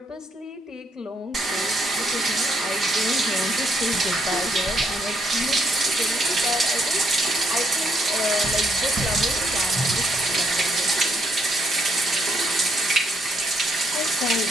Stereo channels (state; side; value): normal; both; correlation 0.73